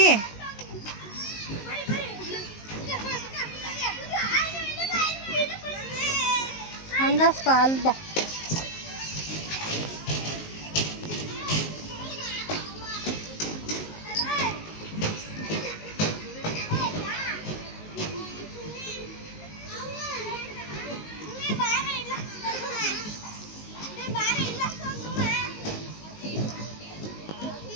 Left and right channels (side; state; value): right; late; 19 ms